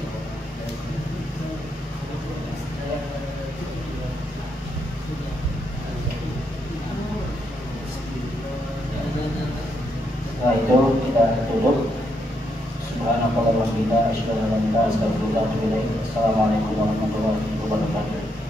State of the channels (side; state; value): both; normal; correlation 0.78